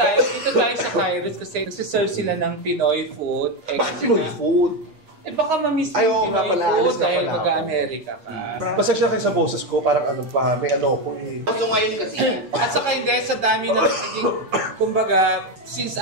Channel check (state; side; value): late; left; 8.5 ms